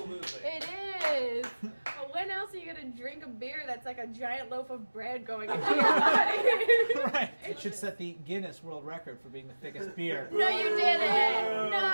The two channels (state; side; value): inverted; both; correlation -1.00